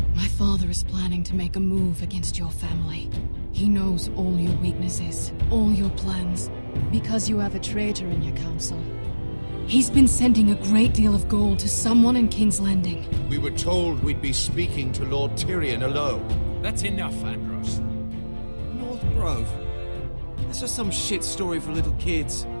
My father is planning to make a move against your family. He knows all your weaknesses, all your plans, because you have a traitor in your council. He's been sending a great deal of gold to someone in King's Landing. We were told we'd be speaking to Lord Tyrion alone. That's enough, Andros. North Grove? That's just some shit story for little kids.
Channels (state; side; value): inverted; both; correlation -1.00